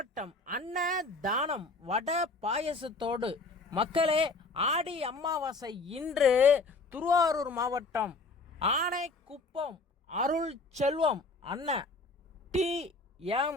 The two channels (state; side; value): quieter; right; 3.5 dB